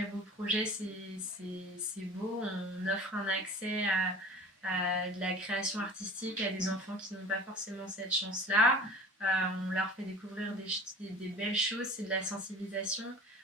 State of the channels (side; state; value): both; normal; correlation 0.40